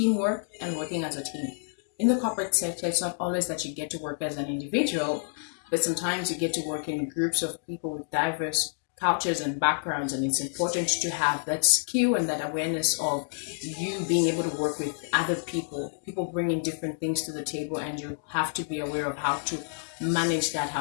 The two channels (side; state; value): right; silent; digital silence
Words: and working as a team. In the corporate sector, it's not always that you get to work as an individual, but sometimes you get to work in groups of people with diverse cultures and backgrounds, and it's important to have that skill and that awareness of you being able to work with other people bringing different things to the table, and you have to be aware of how to manage that,